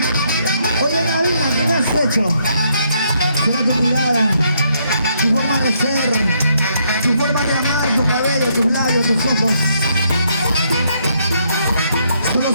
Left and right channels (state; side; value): inverted; both; correlation -0.73